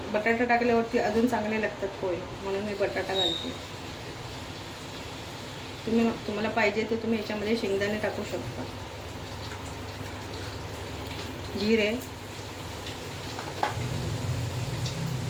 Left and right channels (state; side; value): identical; both; correlation 1.00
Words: बटाटा टाकल्यावरती अजून चांगले लागतात पोहे, म्हणून मी बटाटा घालते. तुम्हाला पाहिजे तर तुम्ही याच्यामध्ये शेंगदाणे टाकू शकता. जिरे,